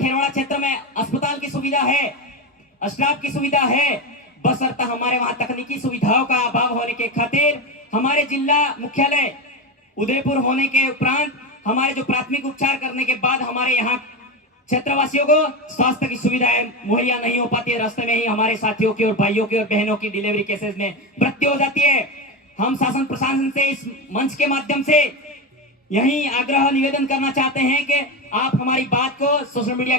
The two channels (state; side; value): normal; both; correlation 0.17